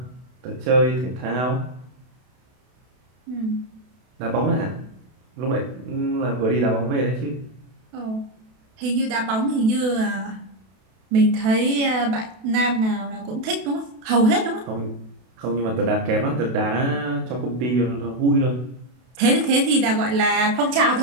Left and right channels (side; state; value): left; late; 32 ms